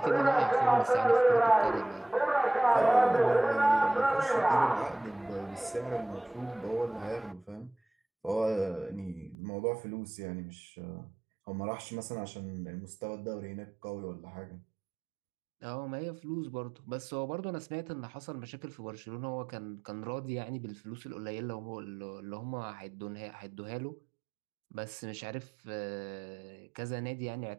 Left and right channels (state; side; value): drops out; left; at 9.3 s